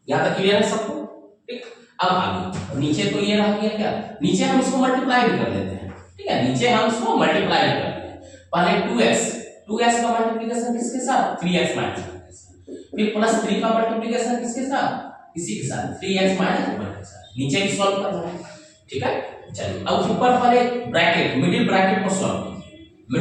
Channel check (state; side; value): identical; both; correlation 1.00